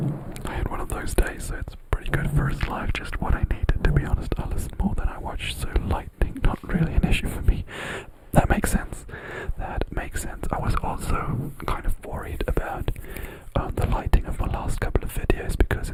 "I had one of those days, so it's pretty good first live. Just what I needed, to be honest. I listen more than I watch, so lightning not really an issue for me." That makes sense. I was also kind of worried about the lighting of my last couple of videos, because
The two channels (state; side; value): identical; both; correlation 1.00